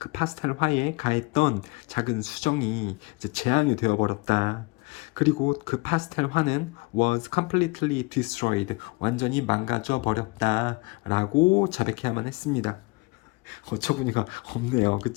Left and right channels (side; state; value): right; quieter; 25.8 dB